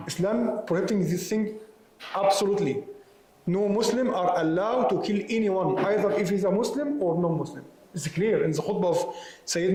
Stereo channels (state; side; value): identical; both; correlation 1.00